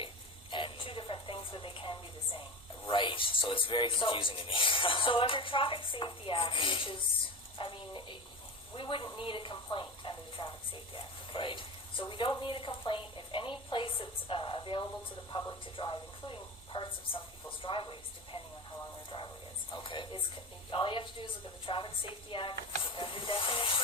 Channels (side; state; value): both; normal; correlation 0.28